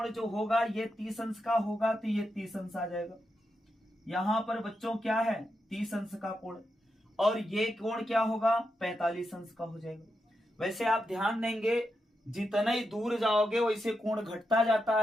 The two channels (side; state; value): both; normal; correlation 0.86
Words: जो होगा ये 30 अंश का होगा, तो ये 30 अंश आ जाएगा। यहां पर बच्चों क्या है, 30 अंश का कोण, और ये कोण क्या होगा, 45 अंश का हो जाएगा। वैसे आप ध्यान देंगे जितना ही दूर जाओगे वैसे कोण घटता जाता